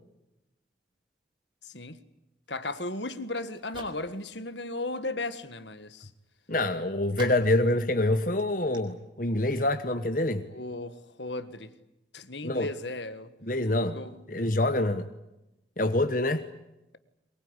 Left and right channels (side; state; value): both; normal; correlation 0.32